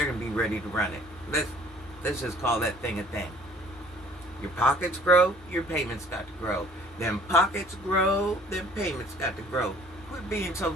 going to be ready to run it. Let's just call that thing a thing. Your pockets grow, your payments got to grow. Them pockets grow, them payments got to grow. Quit being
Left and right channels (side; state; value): both; normal; correlation 0.54